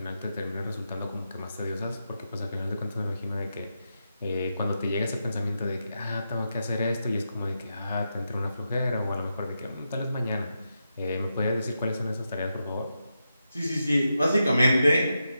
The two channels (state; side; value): inverted; both; correlation -0.87